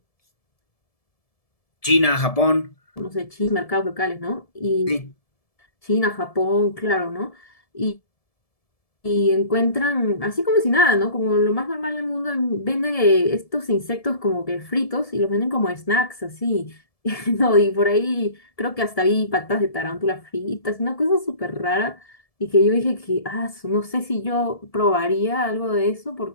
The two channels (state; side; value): late; right; 1.7 ms